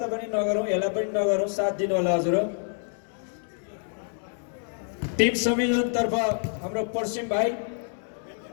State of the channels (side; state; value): right; silent; 60 dB below the other